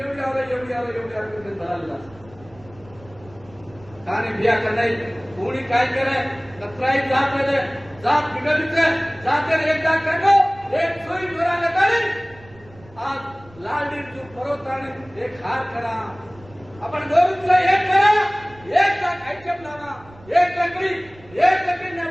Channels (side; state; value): right; noise; rumble, 24 dB below the sound